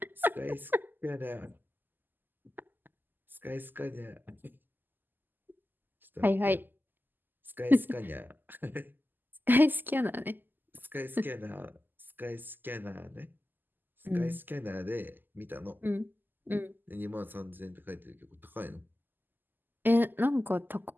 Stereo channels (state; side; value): late; left; 0.090 ms